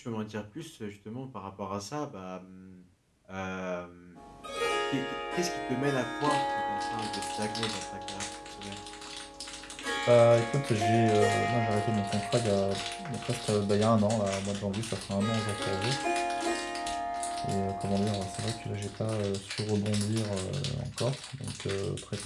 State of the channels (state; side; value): identical; both; correlation 1.00